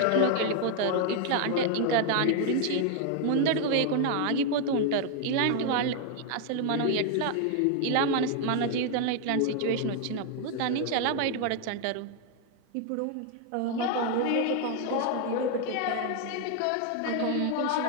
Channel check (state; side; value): different; both; correlation 0.00